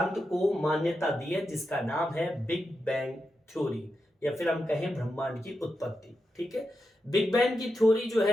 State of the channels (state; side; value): normal; both; correlation 0.88